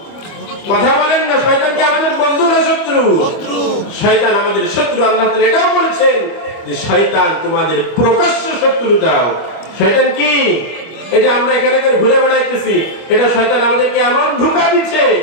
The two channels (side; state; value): right; late; 25 ms